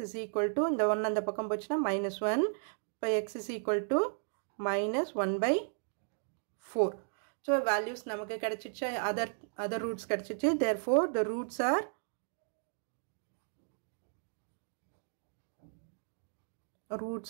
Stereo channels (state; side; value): silent; left; digital silence